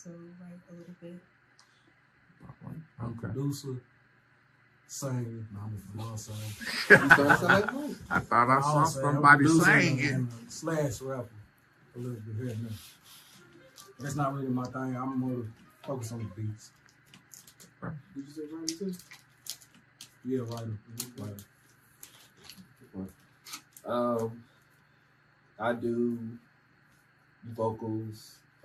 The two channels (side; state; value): both; identical; correlation 1.00